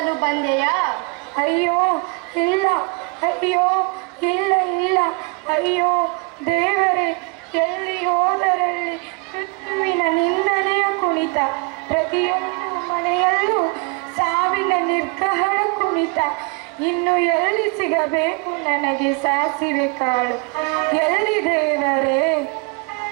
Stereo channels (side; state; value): left; quieter; 30.8 dB